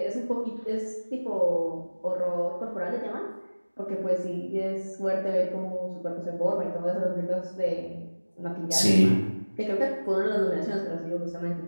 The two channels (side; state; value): both; inverted; correlation -1.00